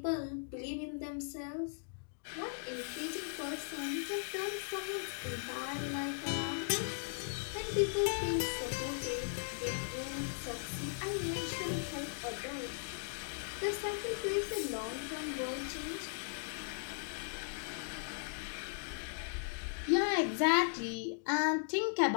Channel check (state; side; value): silent; right; digital silence